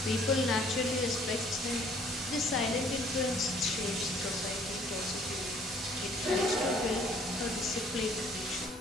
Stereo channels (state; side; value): normal; both; correlation 0.58